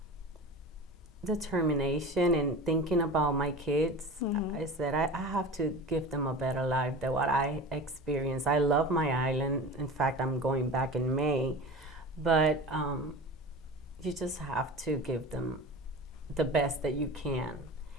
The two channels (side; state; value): both; normal; correlation 0.34